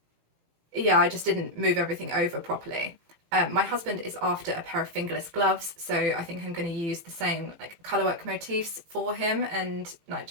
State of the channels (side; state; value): left; late; 18 ms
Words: yeah, I just didn't move everything over properly. My husband is after a pair of fingerless gloves, so I think I'm going to use the same like Colourwork motifs for him and like